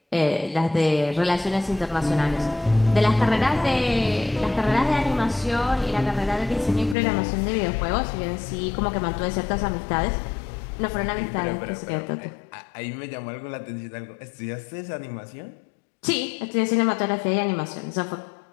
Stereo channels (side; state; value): right; drops out; at 7.0 s